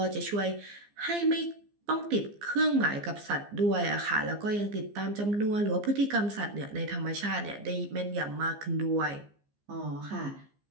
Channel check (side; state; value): left; late; 15 ms